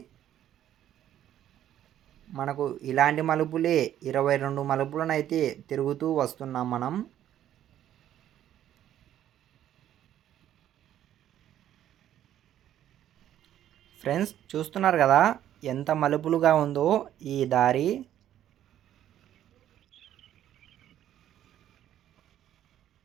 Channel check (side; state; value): left; quieter; 11.5 dB